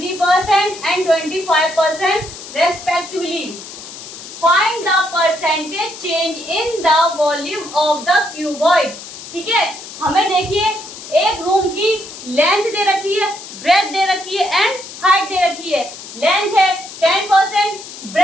and 25% respectively. Find the percentage change in the volume of the cuboid. ठीक है, हमें देखिए एक room की length दे रखी है, breath दे रखी है एंड हाइट दे रखी है। लेंथ है 10%,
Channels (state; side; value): noise; left; hiss, 13 dB below the sound